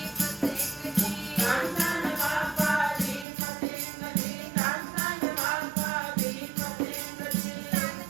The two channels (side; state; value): left; drops out; at 3.2 s